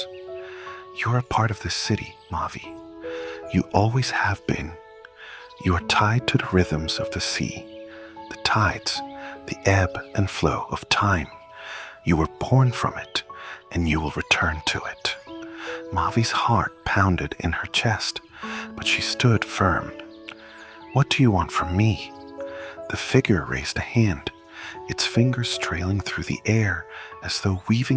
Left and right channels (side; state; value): both; identical; correlation 1.00